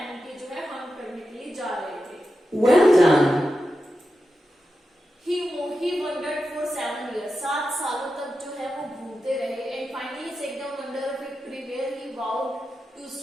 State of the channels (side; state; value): both; normal; correlation 0.90